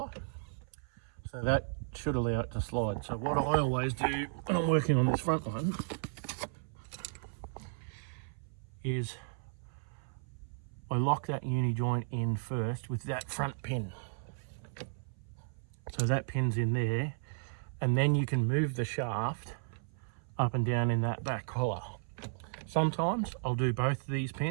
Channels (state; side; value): silent; left; 55 dB below the other